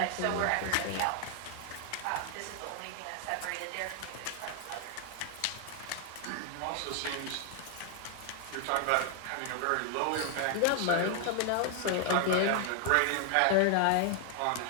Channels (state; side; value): different; both; correlation 0.00